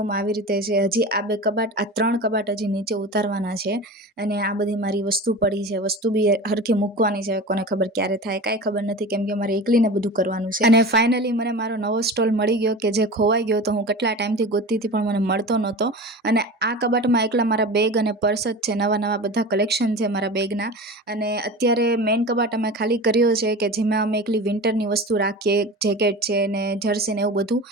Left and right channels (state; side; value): normal; both; correlation 0.32